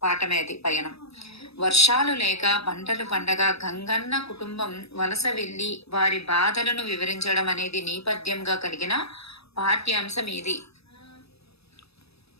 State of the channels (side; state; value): right; late; 0.78 ms